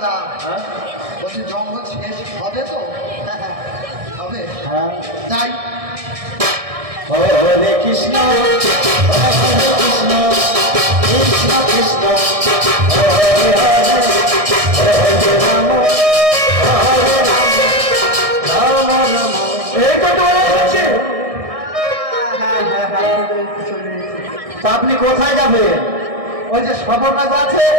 হ্যাঁ? বলছি জঙ্গল শেষ হবে তো? হবে, হ্যাঁ। যাই। হরে কৃষ্ণ হরে কৃষ্ণ কৃষ্ণ কৃষ্ণ হরে হরে হরে রাম হরে রাম রাম রাম। এই তো চলে যাচ্ছে। তা আপনি কোথায় যাবেন? ওই যে সবর রাজা আছে,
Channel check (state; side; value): late; left; 1.6 ms